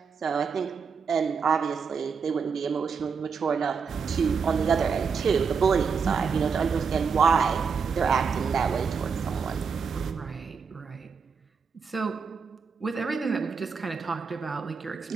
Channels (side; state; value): left; quieter; 5.8 dB